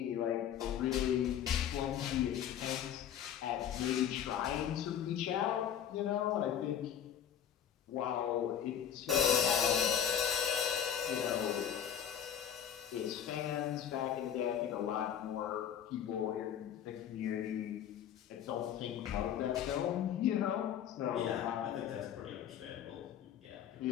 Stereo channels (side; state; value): right; quieter; 9.4 dB